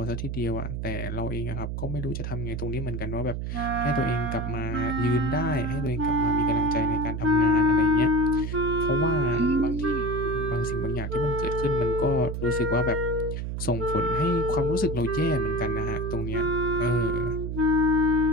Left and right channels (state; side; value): noise; right; hum, 4 dB below the sound